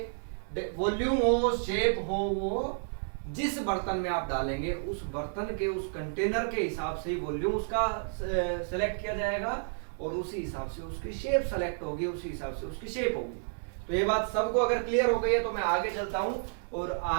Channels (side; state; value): left; silent; digital silence